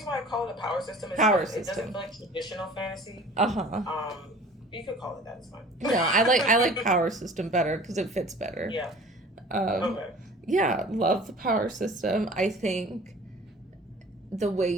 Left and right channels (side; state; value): both; normal; correlation 0.45